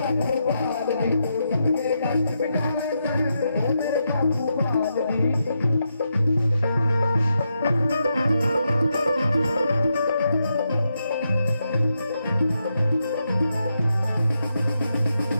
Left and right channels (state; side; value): inverted; both; correlation -0.84